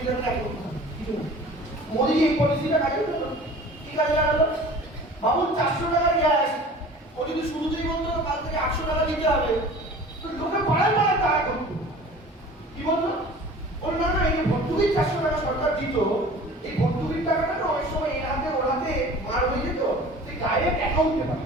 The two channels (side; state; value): both; normal; correlation 0.43